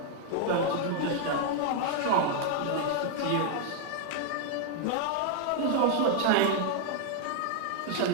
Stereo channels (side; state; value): both; different; correlation 0.00